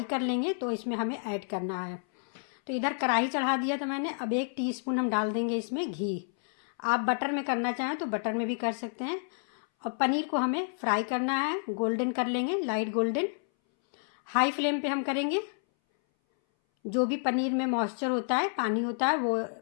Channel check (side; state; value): right; silent; 58 dB below the other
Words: कर लेंगे तो इसमें हमें ऐड करना है। तो इधर कढ़ाई चढ़ा दिया था मैंने। अब 1 टीस्पून हम डाल देंगे इसमें घी। आप बटर में करना चाहें तो बटर में भी कर सकते हैं। और पनीर को हमें फ्राई करना है, गोल्डन कर लेंगे, लाइट गोल्डन। हाई फ्लेम पे हम करेंगे। जो भी पनीर में मॉइस्चर होता है, पानी होता है, वो